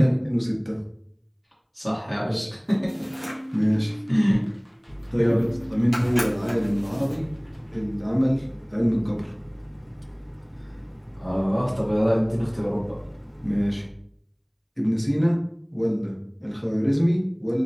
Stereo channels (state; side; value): identical; both; correlation 1.00